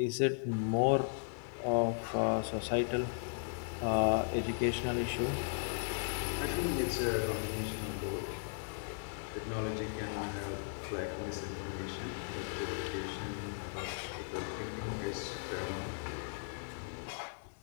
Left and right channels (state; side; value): silent; right; 53 dB below the other